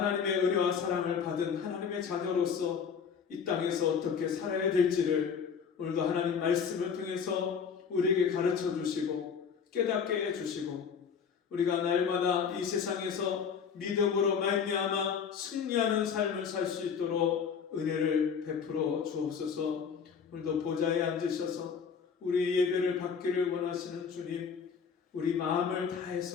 은혜와 사랑을 받은 하나님의 자녀로서 이 땅에서 어떻게 살아야 될지를 오늘도 하나님 말씀을 통해서 우리에게 가르쳐 주시고 깨닫게 해주시고 우리가 날마다 이 세상에서 믿음으로 말미암아 승리하는 삶을 살 수 있도록 은혜를 베풀어 주옵소서. 오늘도 보좌에 앉으셔서 우리 예배를 받기를 원하시는 주님, 우리 마음을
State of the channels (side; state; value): right; quieter; 6.6 dB